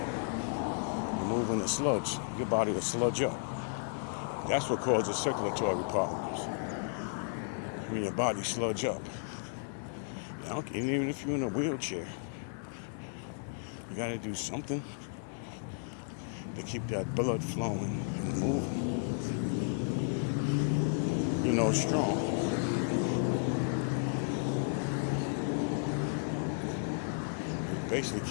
You're moving the sludge. Your body will sludge up. That's what causes circulatory problems. When your body sludge up. And even if you're in a wheelchair, you gotta do something to keep that blood flowing and moving. Strong. It basically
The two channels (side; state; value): right; silent; digital silence